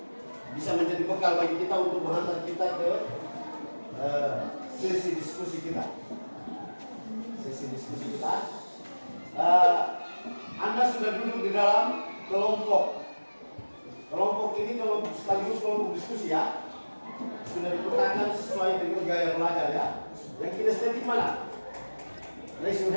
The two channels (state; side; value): inverted; both; correlation -1.00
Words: bisa menjadi bekal bagi kita untuk menghantar kita ke sesi diskusi kita. Sesi diskusi kita. Anda sudah duduk di dalam kelompok. Kelompok ini sekaligus kelompok diskusi ya. Sudah dipetakan sesuai dengan gaya belajar ya. Yang kinestetik mana? Raise your